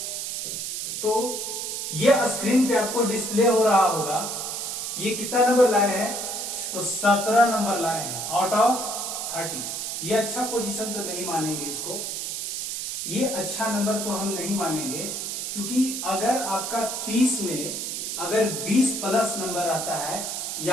तो ये स्क्रीन पे आपको डिस्प्ले हो रहा होगा। ये कितना नंबर लाए हैं, तो 17 नंबर लाए हैं आउट ऑफ 30। ये अच्छा पोजीशन तो नहीं मानेंगे इसको, ये अच्छा नंबर तो हम नहीं मानेंगे, क्योंकि अगर आपका 30 में अगर 20 प्लस नंबर आता है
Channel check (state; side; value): noise; right; hiss, 4 dB below the sound